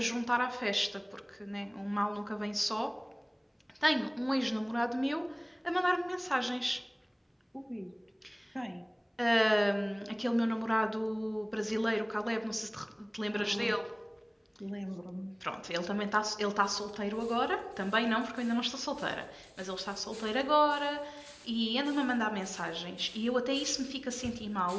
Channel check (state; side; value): identical; both; correlation 1.00